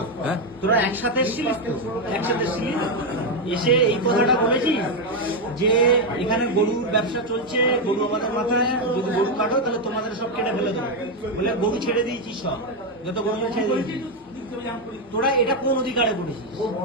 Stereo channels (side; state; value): both; normal; correlation 0.05